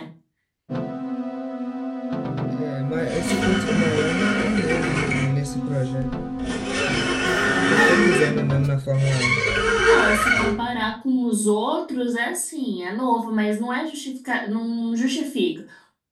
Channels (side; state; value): both; identical; correlation 1.00